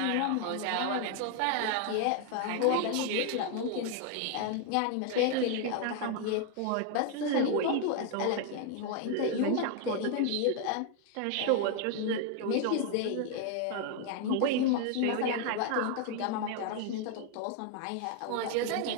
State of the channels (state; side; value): different; both; correlation 0.00